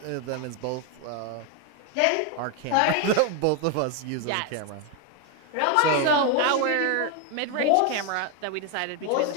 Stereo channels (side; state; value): both; different; correlation 0.01